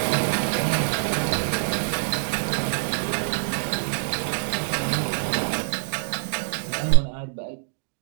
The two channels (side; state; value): left; silent; digital silence